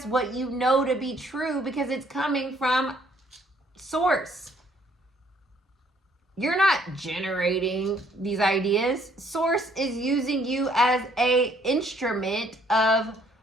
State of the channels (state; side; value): normal; both; correlation 0.64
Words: what you know to be true because it's coming from source. you're not generating these ideas. Source is using you as a instrument of